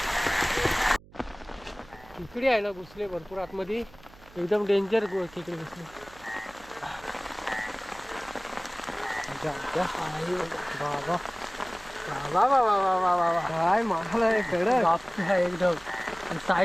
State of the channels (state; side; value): noise; right; hum, 23 dB below the sound